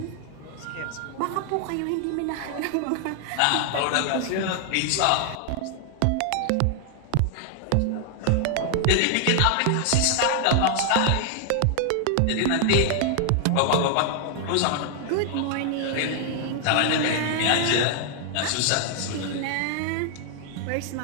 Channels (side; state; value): both; different; correlation 0.00